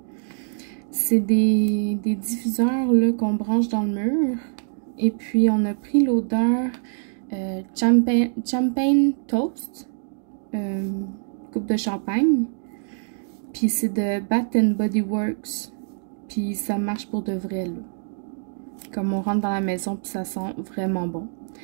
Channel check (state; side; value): silent; left; digital silence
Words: C'est des diffuseurs là qu'on branche dans le mur. Et puis, on a pris l'odeur champagne toast, coupe de champagne. Puis, c'est de Bath & Body Works. Puis, ça marche pour de vrai, là. Comme on rentre dans la maison, puis ça sent vraiment bon.